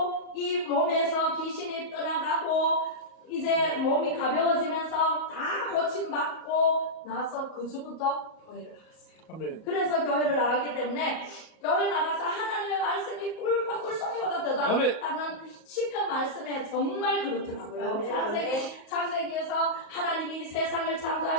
이 몸에서 귀신이 떠나가고 이제 몸이 가벼워지면서 다 고침받고 나서 그 주부터 교회를 나갔어요. 아멘. 그래서 교회를 나왔기 때문에 교회 나가서 하나님의 말씀이 꿀송이보다 더 아멘. 낫다는 시편 말씀에 정말 그렇더라고요. 아멘. 창세기에서 하나님이 이 세상을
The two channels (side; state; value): right; late; 33 ms